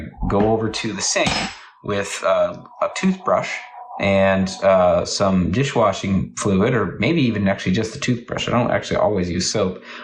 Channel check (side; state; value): both; identical; correlation 1.00